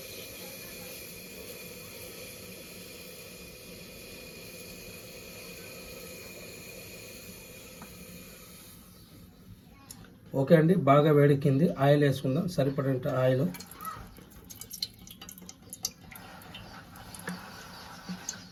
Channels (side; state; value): both; identical; correlation 1.00